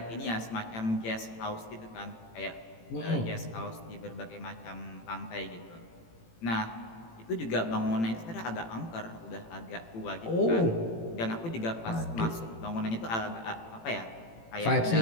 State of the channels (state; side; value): late; right; 18 ms